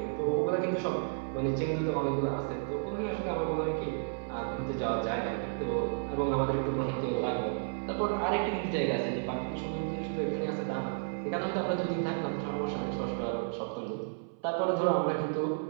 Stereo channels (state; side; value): silent; left; 56 dB below the other